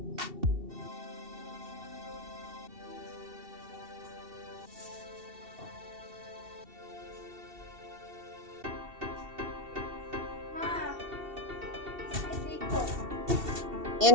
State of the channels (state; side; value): late; left; 2.7 ms